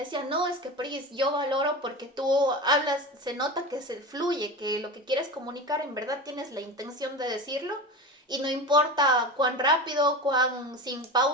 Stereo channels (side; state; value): both; normal; correlation 0.27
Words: no, es que Pris, yo valoro porque tú hablas, se nota que se fluye, que lo que quieres comunicar en verdad tienes la intención de decirlo. Y no importa cuán rápido, cuán sin